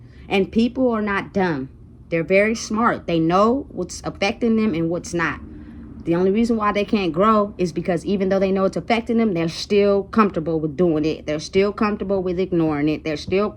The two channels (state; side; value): identical; both; correlation 1.00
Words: And people are not dumb. They're very smart. They know what's affecting them and what's not. The only reason why they can't grow is because even though they know it's affecting them, they're still comfortable with doing it. They're still comfortable with ignoring it. They're still